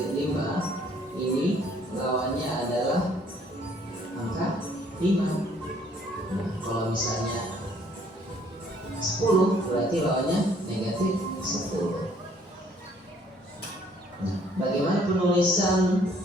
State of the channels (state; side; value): normal; both; correlation 0.62